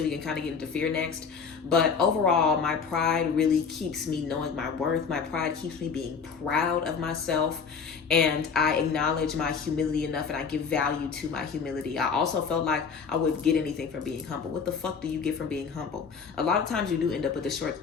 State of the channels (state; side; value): quieter; right; 5.8 dB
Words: we can kind of get into fear next. But overall, my pride really keeps me knowing my worth. My pride keeps me being proud of myself. And I acknowledge my humility enough and I give value to my humility. I also felt like I wouldn't get anything from being humble. What the fuck do you get from being humble? A lot of times you do end up with the short